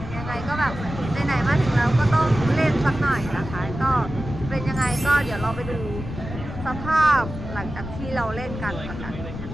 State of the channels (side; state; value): left; noise; rumble, 9 dB below the sound